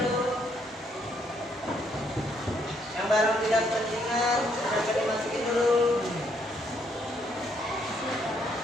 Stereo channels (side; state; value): both; normal; correlation 0.71